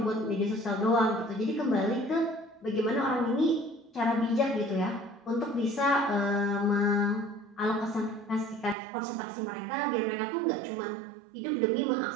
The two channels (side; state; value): left; drops out; at 8.8 s